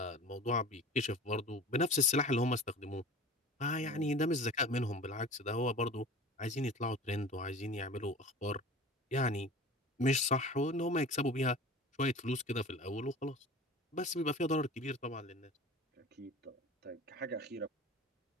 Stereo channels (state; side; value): normal; both; correlation 0.38